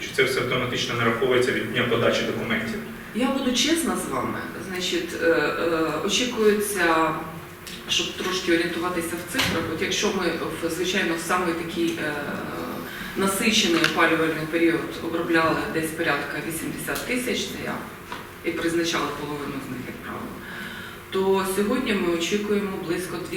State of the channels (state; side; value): identical; both; correlation 1.00